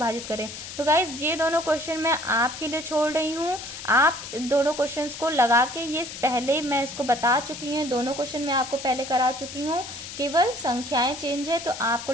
करें। तो गाइज ये दोनों क्वेश्चन मैं आपके लिए छोड़ रही हूँ। आप दोनों क्वेश्चंस को लगा के, ये पहले मैं इसको बता चुकी हूँ, दोनों क्वेश्चन मैं आपको पहले करा चुकी हूँ, केवल संख्याएं चेंज है। तो आपको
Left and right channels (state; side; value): noise; left; hiss, 10 dB below the sound